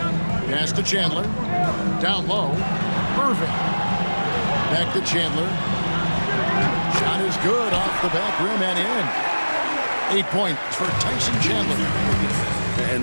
Pass to Chandler. Down low. Irving. Back to Chandler. Shot is good off the back rim and in. 8 points for Tyson Chandler. And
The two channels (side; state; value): both; inverted; correlation -1.00